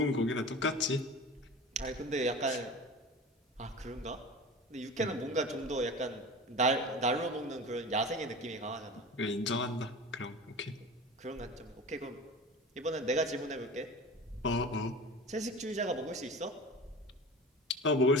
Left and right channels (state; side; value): normal; both; correlation 0.34